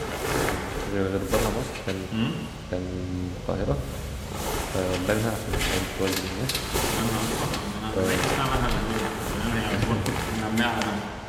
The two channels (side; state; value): both; identical; correlation 1.00